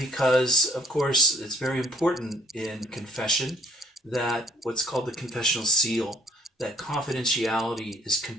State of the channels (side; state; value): both; normal; correlation 0.60